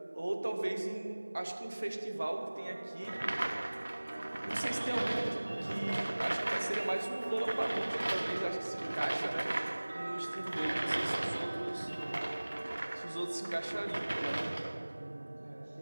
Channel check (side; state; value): both; inverted; correlation -1.00